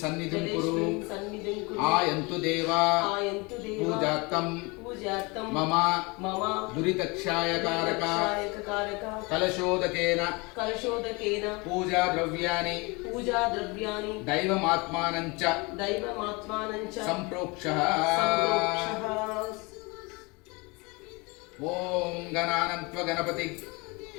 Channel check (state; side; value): quieter; right; 27.1 dB